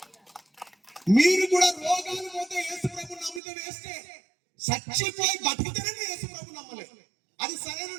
మీరు కూడా రోగాలు పోతే యేసు ప్రభు నమ్మితే వేస్తే, చచ్చిపోయి బతికితేనే యేసు ప్రభు నమ్మలేదు. అది సరైన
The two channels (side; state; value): left; drops out; at 3.4 s